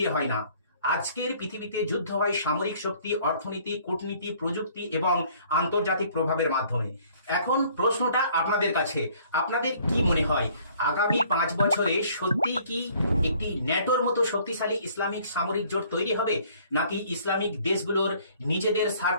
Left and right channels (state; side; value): inverted; both; correlation -0.58